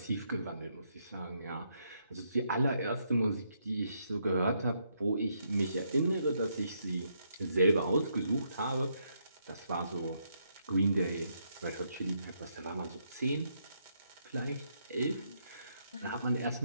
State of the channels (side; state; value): both; inverted; correlation -0.76